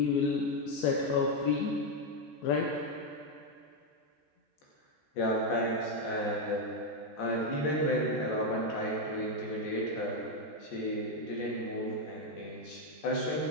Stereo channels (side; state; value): right; late; 14 ms